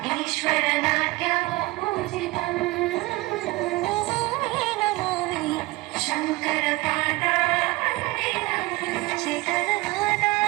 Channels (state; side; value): quieter; left; 21.4 dB